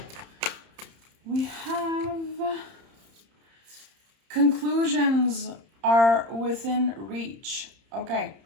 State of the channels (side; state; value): left; late; 31 ms